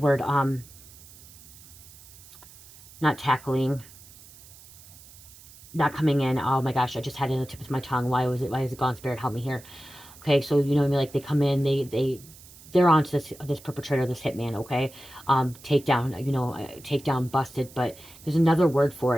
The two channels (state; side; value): noise; right; hiss, 21 dB below the sound